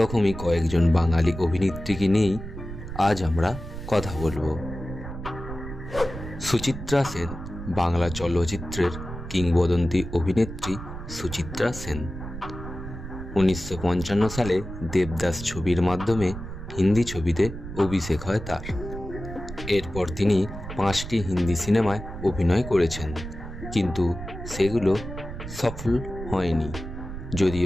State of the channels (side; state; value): right; noise; rumble, 10 dB below the sound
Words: কয়েকজন বাঙালি অভিনেত্রীকে নিয়েই আজ আমরা কথা বলবো। সুচিত্রা সেন, বাংলা চলচ্চিত্রের কিংবদন্তি অভিনেত্রী সুচিত্রা সেন। 1955 সালে দেবদাস ছবির মাধ্যমে হিন্দি ছবিতে অভিষেক হয় তার। এরপর তিনি 5টি হিন্দি সিনেমায় অভিনয় করেছেন, কিন্তু সেগুলো সফল হয়নি।